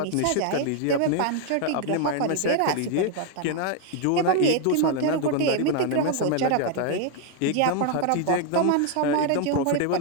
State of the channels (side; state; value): both; different; correlation 0.00